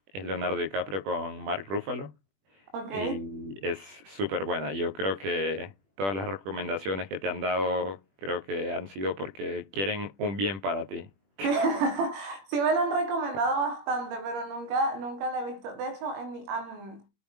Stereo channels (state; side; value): late; left; 21 ms